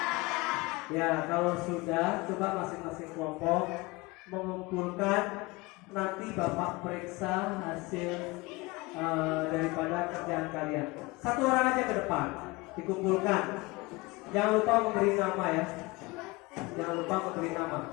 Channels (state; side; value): quieter; right; 23.5 dB